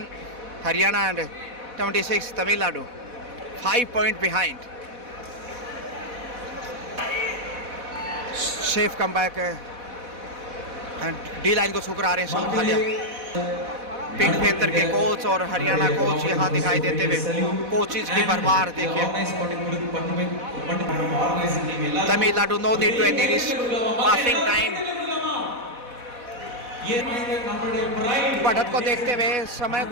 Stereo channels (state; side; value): late; left; 4.1 ms